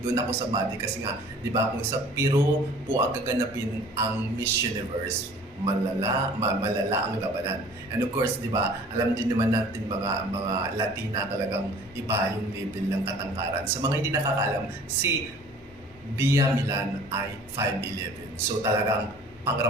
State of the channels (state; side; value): normal; both; correlation 0.49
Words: ako sa body kasi nga, di ba, kung sa Piro po ang gaganapin ang Miss Universe, malala ang labanan. And of course, di ba, alam din naman natin mga Latina talagang iba yung level ng katangkaran. Sa mga hindi nakakaalam, si Bia Milan ay 5'11". So talagang